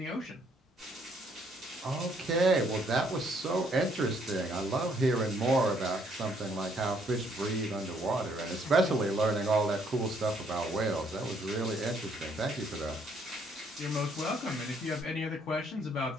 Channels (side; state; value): both; normal; correlation 0.67